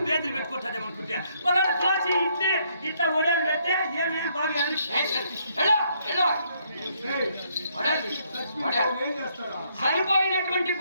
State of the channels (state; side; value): inverted; both; correlation -0.71